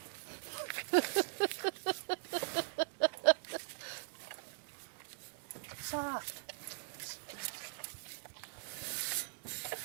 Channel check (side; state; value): left; silent; 51 dB below the other